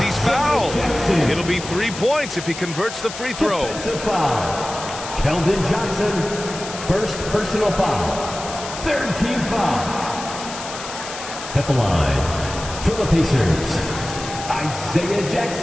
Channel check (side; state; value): left; noise; hiss, 10 dB below the sound